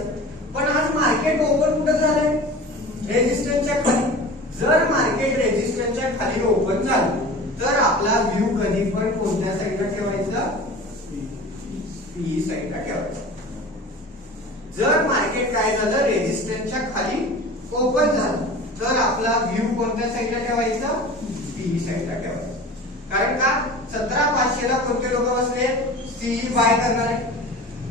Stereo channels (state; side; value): normal; both; correlation 0.37